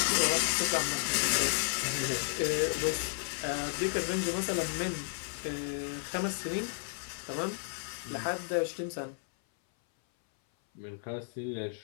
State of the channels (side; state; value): right; silent; 56 dB below the other